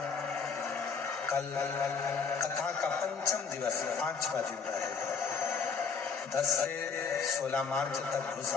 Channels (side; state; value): right; quieter; 5.6 dB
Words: कल कथा का पंचम दिवस 5वां दिन रहेगा। 10 से 16 मार्च तक